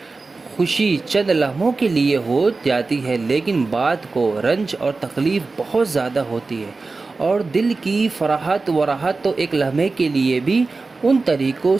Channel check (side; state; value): left; quieter; 3.8 dB